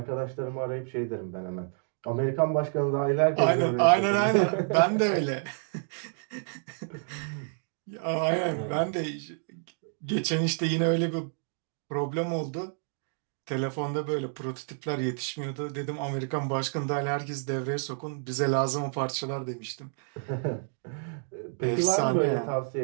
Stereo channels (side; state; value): left; silent; digital silence